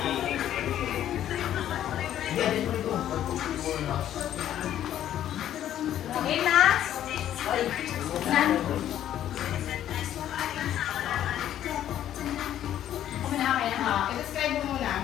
Okay na? Nan? Okay na, okay na. I-describe mo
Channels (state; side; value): quieter; right; 11.4 dB